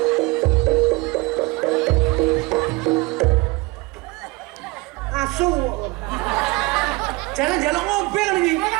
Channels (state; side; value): quieter; left; 23.7 dB